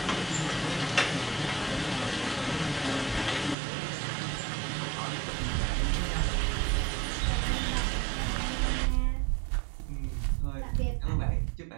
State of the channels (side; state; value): left; drops out; at 3.6 s